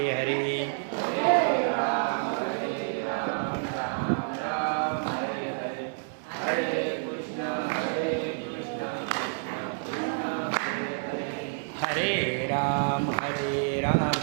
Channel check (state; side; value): silent; left; digital silence